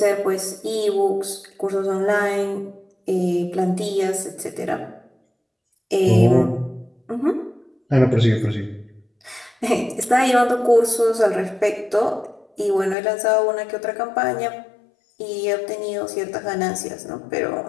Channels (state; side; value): drops out; right; at 13.0 s